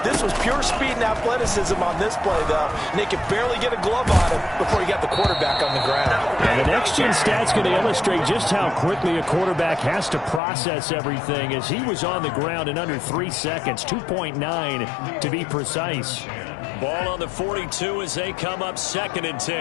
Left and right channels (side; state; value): right; drops out; at 10.4 s